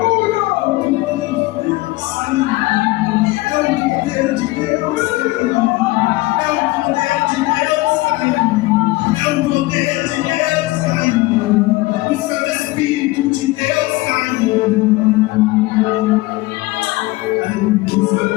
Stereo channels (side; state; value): right; quieter; 20.7 dB